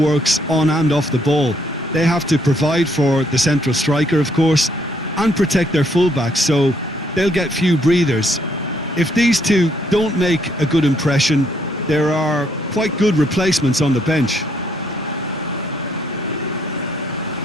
on and off the ball. They have to provide for the central striker, of course, and protect their fullbacks, so they'll get few breathers. If these two don't make a good impression, there are quite good replacements on the bench.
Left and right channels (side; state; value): both; normal; correlation 0.70